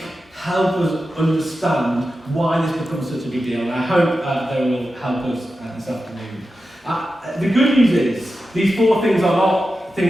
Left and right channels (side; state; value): both; normal; correlation 0.91